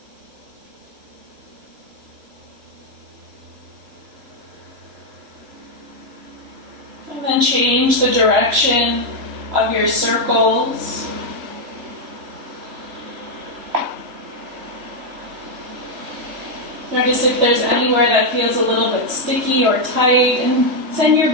And then change the direction of your circles. Notice if there's anywhere that feels a little bit sticky or tight, and send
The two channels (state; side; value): late; left; 3.0 ms